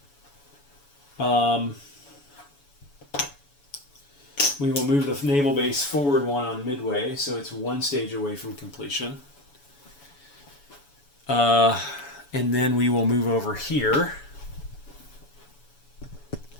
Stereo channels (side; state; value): right; late; 7.0 ms